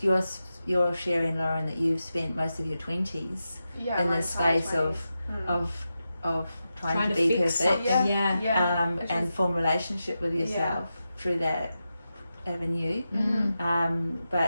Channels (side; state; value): both; inverted; correlation -0.90